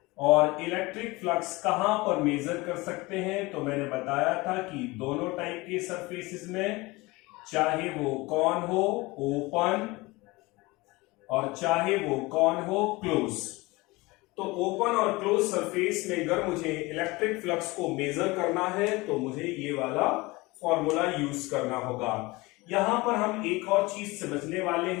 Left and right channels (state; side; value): quieter; right; 22.7 dB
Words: और इलेक्ट्रिक फ्लक्स कहां पर मेजर कर सकते हैं, तो मैंने बताया था कि दोनों टाइप के सरफेसेस में, चाहे वो कौन हो ओपन और चाहे वो कौन हो क्लोज। तो ओपन और क्लोज सरफेस में अगर मुझे इलेक्ट्रिक फ्लक्स को मेजर करना है तो मुझे ये वाला फॉर्मूला यूज करना होगा। यहां पर हम एक और चीज समझने वाले